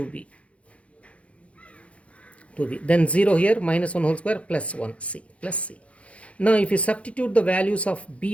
Then 0 here, minus 1 whole square plus 1, c, plus c. Now if you substitute the values of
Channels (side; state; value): right; late; 0.063 ms